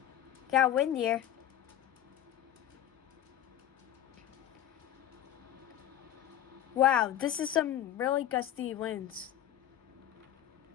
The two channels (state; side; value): quieter; right; 11.4 dB